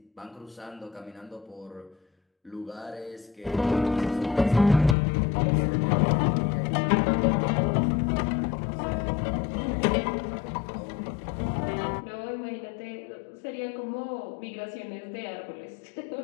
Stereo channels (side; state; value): right; drops out; at 5.0 s